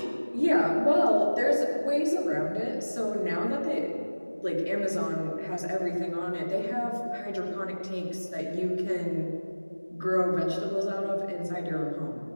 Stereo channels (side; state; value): both; inverted; correlation -1.00